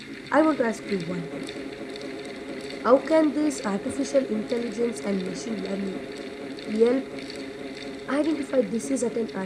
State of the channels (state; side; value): identical; both; correlation 1.00